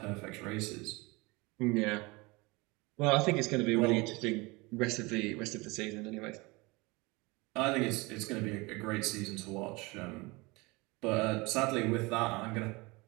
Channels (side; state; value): left; quieter; 24.8 dB